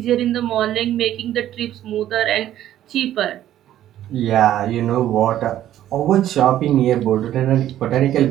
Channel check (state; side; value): quieter; left; 12.3 dB